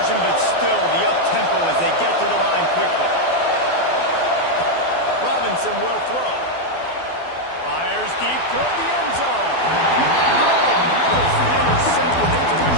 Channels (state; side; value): late; right; 12 ms